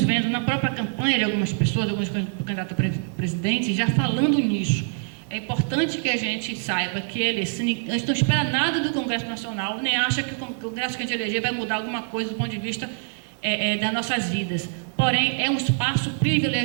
vendo na própria campanha de algumas pessoas, alguns candidatos a presidente, já falando nisso. É importante que a gente saiba que a gente não espera nada do Congresso Nacional, nem acha que o Congresso que a gente eleger vai mudar alguma coisa do ponto de vista das nossas vidas. Porém, é um espaço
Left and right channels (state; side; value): silent; left; 58 dB below the other